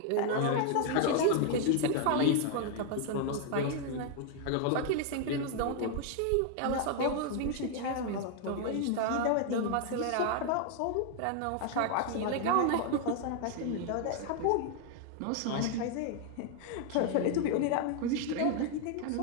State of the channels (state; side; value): different; both; correlation 0.00